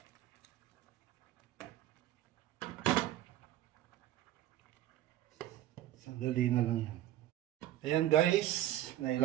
Sandali na lang yan. Ayan guys,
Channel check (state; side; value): quieter; left; 13.5 dB